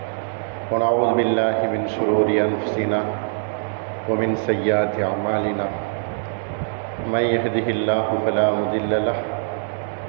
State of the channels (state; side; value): silent; left; digital silence